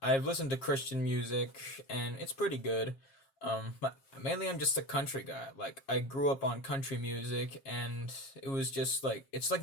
listened to Christian music and it's pretty good. But mainly I'm just a country guy. Like I grew up on country music and it was just like it's like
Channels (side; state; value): right; late; 7.4 ms